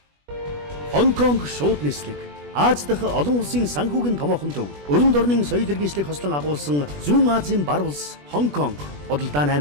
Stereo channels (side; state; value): left; late; 20 ms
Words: Хонконг шууд нислэг. Аз дахь олон улсын санхүүгийн томоохон төв. Өрөнд орны соёл иргэншлийг хослон агуулсан Зүүн Азийн бар улс Хонконг. Бодлоо